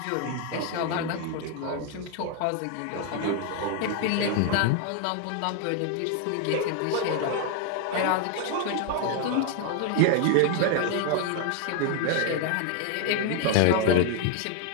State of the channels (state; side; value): different; both; correlation 0.00